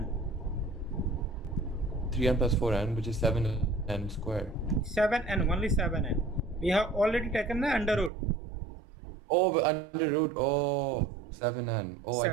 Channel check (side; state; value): left; drops out; at 8.1 s